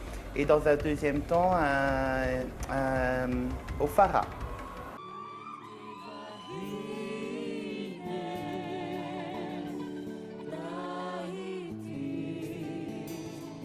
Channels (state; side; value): identical; both; correlation 1.00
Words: et dans un deuxième temps, au Fara.